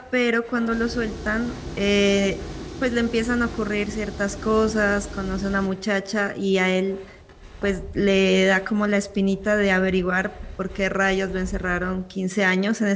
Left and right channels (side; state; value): both; identical; correlation 1.00